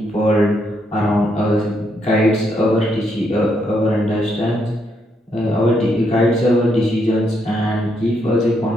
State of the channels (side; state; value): both; normal; correlation 0.76